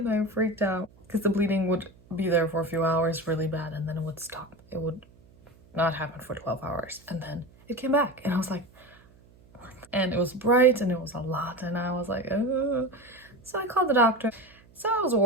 I freaked out, because the bleeding would be there for a few hours really bad, and then it would stop. It would not happen for 12 hours, and then it came back, and I was like, and it was bright and it was a lot, and I was like, oh. So I called the doctor. So I was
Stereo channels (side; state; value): right; noise; hum, 27 dB below the sound